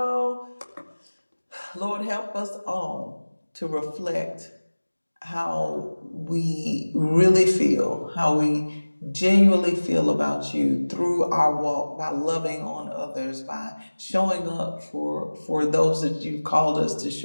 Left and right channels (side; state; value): both; inverted; correlation -1.00